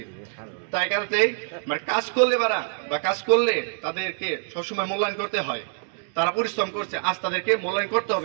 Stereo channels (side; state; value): left; silent; 61 dB below the other